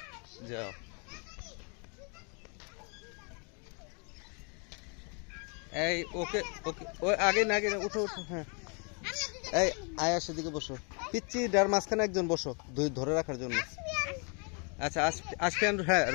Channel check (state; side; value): quieter; right; 36.7 dB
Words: যাও। এই ওকে ওকে, ওই আগে না, আগে না, উঠো উঠো। হ্যাঁ, এই আয়, সেদিকে বসো। পিচ্ছি ডার মাঝখানে একজন বসো, দুই ধরে রাখার জন্য। আচ্ছা, আসবে। হ্যাঁ,